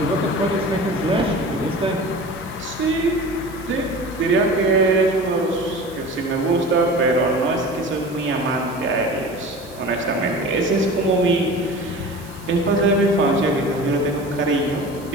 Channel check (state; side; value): noise; right; hiss, 21 dB below the sound